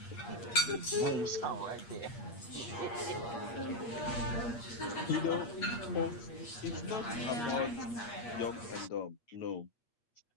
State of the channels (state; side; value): late; right; 8.5 ms